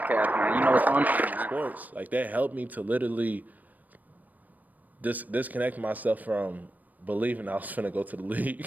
man. You know what's going on, man. Sports like that helped me to literally disconnect myself from believing I was finna go to the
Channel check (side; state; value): left; late; 0.081 ms